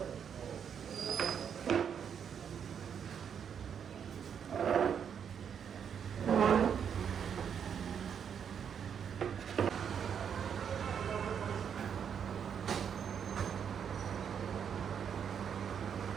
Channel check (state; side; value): quieter; left; 7.7 dB